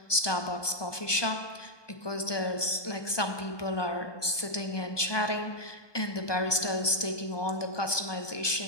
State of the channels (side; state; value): right; late; 1.2 ms